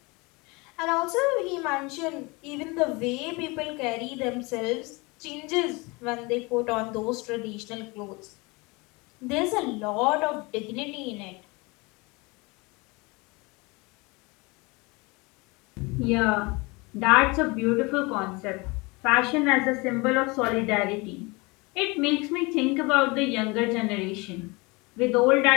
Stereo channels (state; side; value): quieter; right; 26.2 dB